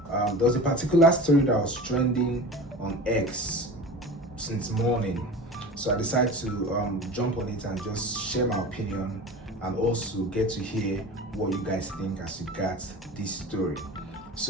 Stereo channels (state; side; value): normal; both; correlation 0.34